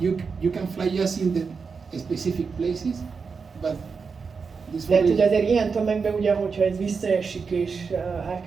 you can fly just in the specific places, but this. De ugye azért ilyen tömegben ugye, hogyha ez visszaesik és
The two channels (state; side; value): quieter; left; 5.3 dB